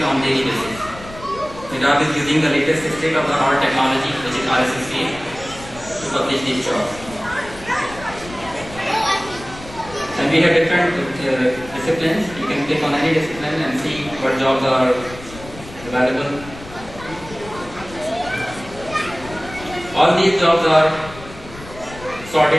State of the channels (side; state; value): left; noise; rumble, 16 dB below the sound